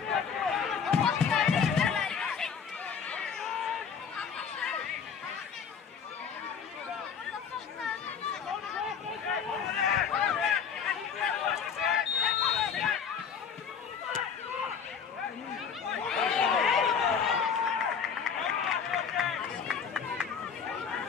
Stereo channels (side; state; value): right; quieter; 6.8 dB